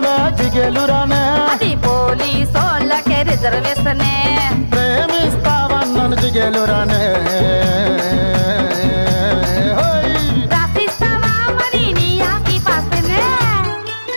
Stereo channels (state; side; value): inverted; both; correlation -1.00